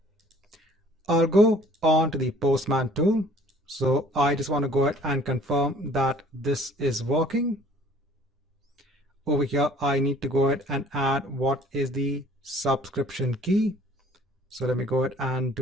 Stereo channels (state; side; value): normal; both; correlation 0.54